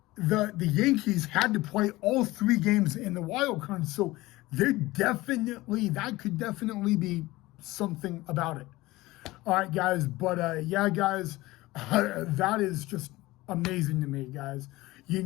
the Yankees had to play all 3 games in the wild card. So that could definitely be something about it. All right, guys. But guys, that is just amazing to me, guys.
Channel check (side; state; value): right; quieter; 19.2 dB